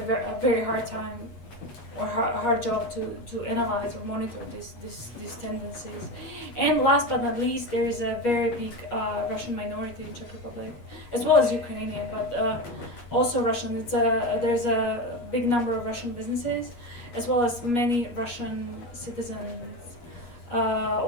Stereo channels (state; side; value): late; right; 8.4 ms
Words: very hard time or hard job to analyze or monitor these tendencies. And last but not least, there is a very big Russian minority in Czech Republic, as well as Ukrainian, but also Russian. There's a big number of Russian businesses, as well as many Russian citizens,